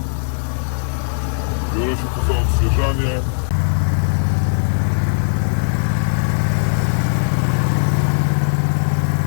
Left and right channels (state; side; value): silent; right; digital silence